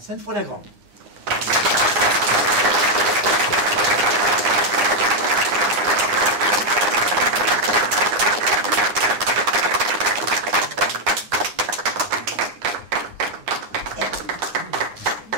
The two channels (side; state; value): left; late; 9.7 ms